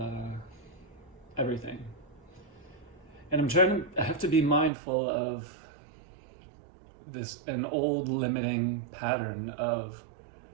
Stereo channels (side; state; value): left; drops out; at 4.7 s